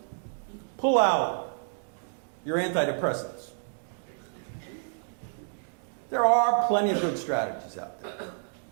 pull out your antidepressants, there are plenty of good strategies out there.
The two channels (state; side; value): silent; left; digital silence